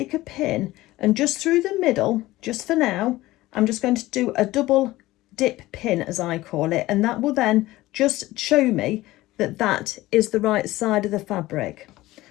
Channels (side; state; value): right; quieter; 17.7 dB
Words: a pin and just through the middle, just for now, I'm just going to do a double dip pin, as I call it, and that will then just show me that that is the right side of the fabric.